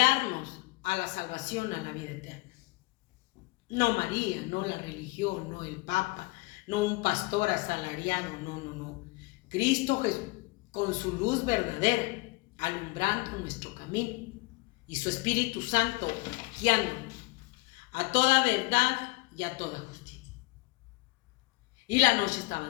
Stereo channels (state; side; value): quieter; right; 24.1 dB